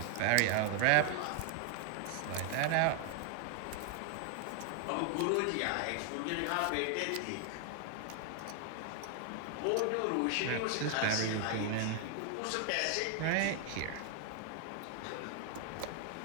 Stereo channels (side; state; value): both; different; correlation 0.00